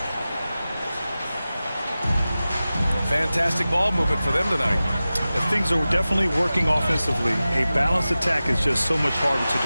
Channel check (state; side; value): inverted; both; correlation -0.95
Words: Fantastic ball movement for them tonight. Things are definitely working offensively. A balanced attack is just so much harder to